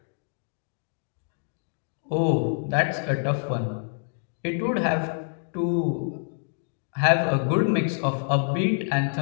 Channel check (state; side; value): silent; right; digital silence